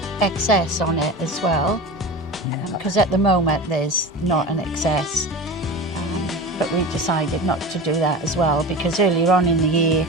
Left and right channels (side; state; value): both; normal; correlation 0.30